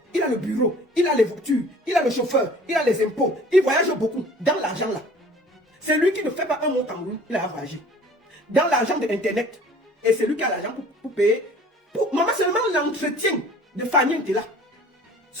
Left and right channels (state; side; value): normal; both; correlation 0.49